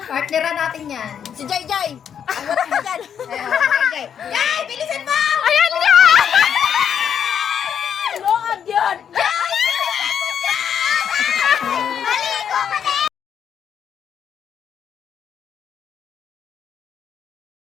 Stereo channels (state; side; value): quieter; right; 8.2 dB